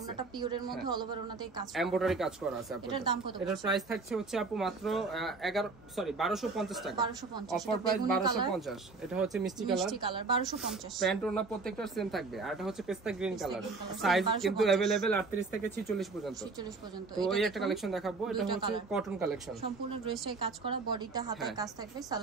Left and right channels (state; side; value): quieter; left; 4.0 dB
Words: ওনাটা পিওরের মধ্যে অল ওভার ওনাতে কাজ করা, এমব্রয়ডারি কাজ করা আছে আপু। এটার দাম কত? এটার প্রাইস থাকছে হচ্ছে আপু মাত্র 1250 টাকা, 1250, অফার প্রাইস 1250। এটা হচ্ছে মিষ্টি কালার, 1250। প্যান্ট ওনা প্রত্যেকটার সেম থাকবে। আর এটা হচ্ছে পেস্তা গ্রিন কালার, সাইজ কিন্তু अवेलेबल 38 থেকে 46 পর্যন্ত। তো এই একটা কালেকশন দেখাবো, এটা হচ্ছে কটন কালেকশন, সম্পূর্ণ ড্রেসটাই কাজ করা, বডিটা হাতে কাজ থাকবে,